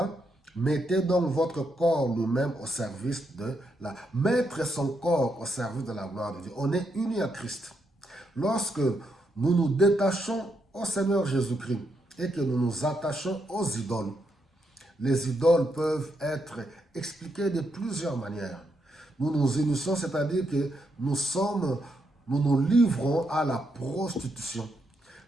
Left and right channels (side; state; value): both; normal; correlation 0.80